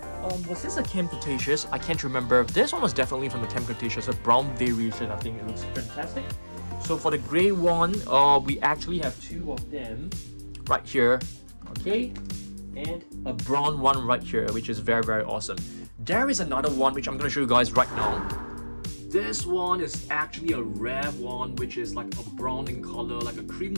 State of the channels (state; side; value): inverted; both; correlation -1.00